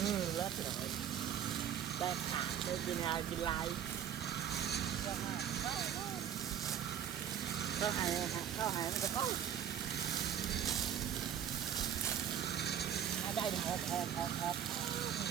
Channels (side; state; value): left; quieter; 9.3 dB